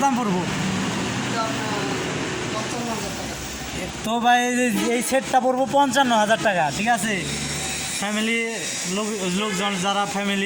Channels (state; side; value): identical; both; correlation 1.00